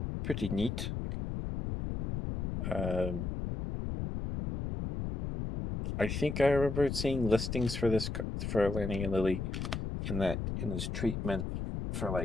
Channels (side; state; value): left; noise; rumble, 3 dB below the sound